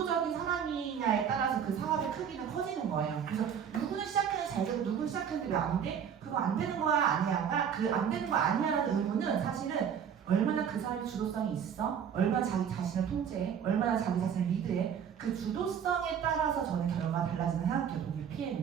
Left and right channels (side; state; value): left; quieter; 8.0 dB